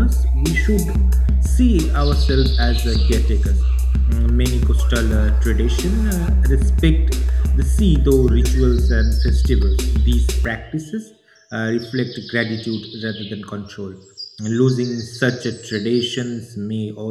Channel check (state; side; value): identical; both; correlation 1.00